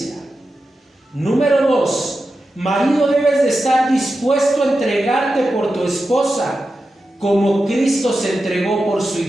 Número 2, marido, debes de estar dispuesto a entregarte por tu esposa como Cristo se entregó por su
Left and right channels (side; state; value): both; normal; correlation 0.91